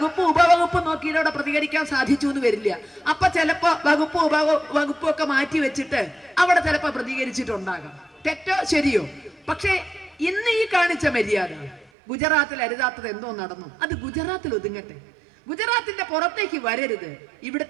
ഉപവകുപ്പ് നോക്കിയിലൂടെ പ്രതികരിക്കാൻ സാധിച്ചു എന്ന് വരില്ല. അപ്പൊ ചിലപ്പോ വകുപ്പ് ഉപവകുപ്പും ഒക്കെ മാറ്റി വെച്ചിട്ട് അവിടെ ചിലപ്പോ പ്രതികരിച്ചിട്ടുണ്ടാകാം. തെറ്റോ ശരിയോ? പക്ഷേ ഇന്ന് ഈ കാണിച്ച മര്യാദ ഗുജറാത്തിൽ അരുതാത്തത് എന്തോ നടന്നു, അത് ഗുജറാത്തിൽ ഒതുങ്ങട്ടെ. ഗുജറാത്തിന്റെ പുറത്തേക്ക് വരരുത്.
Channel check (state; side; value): drops out; left; at 11.9 s